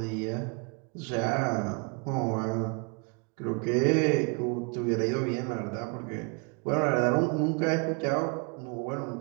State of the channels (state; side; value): quieter; left; 34.4 dB